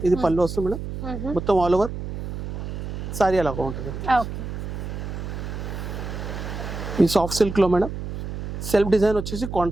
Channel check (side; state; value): right; noise; hum, 6 dB below the sound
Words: ఇది పళ్ళు వస్తుంది మేడం. మొత్తం ఆల్ ఓవర్ సారీ అలాగా ఉంటుంది. ఓకే, ఈ సాఫ్ట్ సిల్క్లో మేడం సెల్ఫ్ డిజైన్ వచ్చేసి